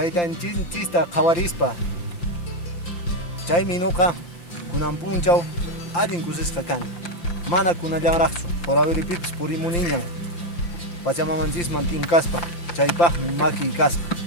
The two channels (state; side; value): late; right; 5.8 ms